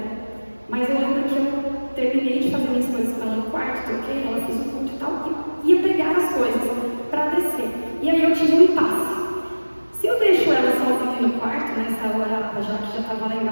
mas eu lembro que eu terminei de fazer minhas coisas com ela no quarto, troquei, ela fez o culto e tal, e ia pegar as coisas.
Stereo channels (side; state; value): both; inverted; correlation -1.00